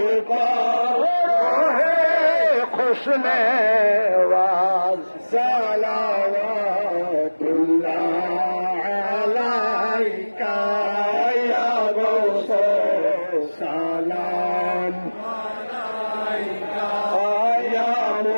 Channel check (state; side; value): inverted; both; correlation -1.00